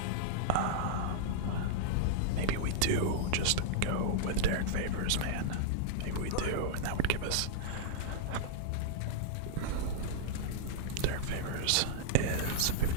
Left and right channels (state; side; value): different; both; correlation -0.02